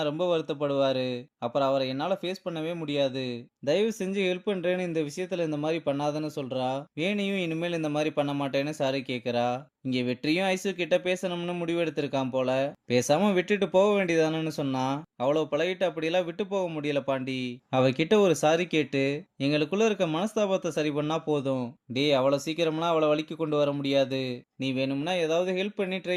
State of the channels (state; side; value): identical; both; correlation 1.00